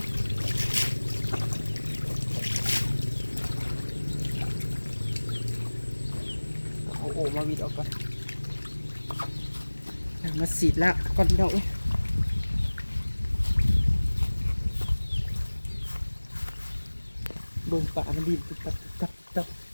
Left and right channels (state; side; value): inverted; both; correlation -1.00